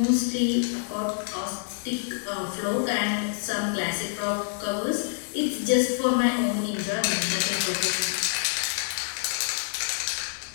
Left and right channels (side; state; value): right; silent; digital silence